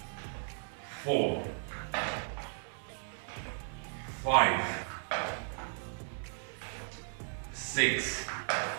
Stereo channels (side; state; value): left; silent; 54 dB below the other